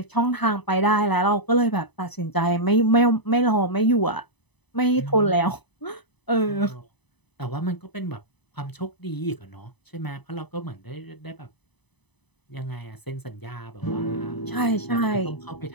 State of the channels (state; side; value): late; right; 0.99 ms